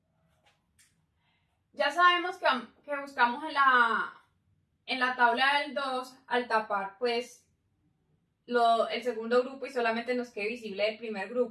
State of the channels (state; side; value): identical; both; correlation 1.00